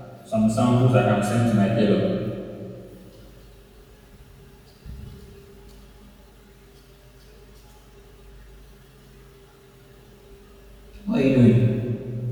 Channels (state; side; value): identical; both; correlation 1.00